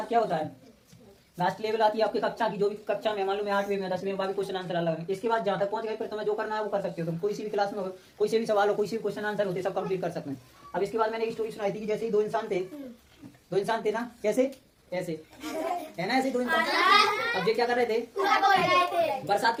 क्या होता है, लास्ट लेवल आती है आपकी कक्षा की। जो भी कक्षा में मालूम है 8वीं में 10वीं में क्वेश्चन आंसर अलग है। इसके बाद जहाँ तक पहुंच गए फिर तुम्हें जो करना है वो कर सकते हो। तुम कोई सी भी क्लास में हो, कोई से भी सवाल हो, कोई से भी क्वेश्चन आंसर होते सब कंप्लीट कर सकते हैं। अब इसके बाद मैंने एक स्टोरी सुनाई थी कि जैसे ही दो इंसान थे ना, कैसे ऐसे है ना, ऐसे 2 इंसान। अब ये क्या कर रहे थे, बरसात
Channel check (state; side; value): identical; both; correlation 1.00